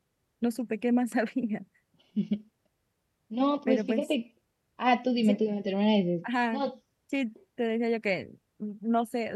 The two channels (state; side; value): identical; both; correlation 1.00